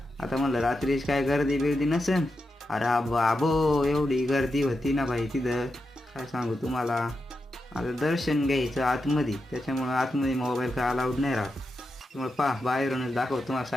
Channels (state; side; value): normal; both; correlation 0.88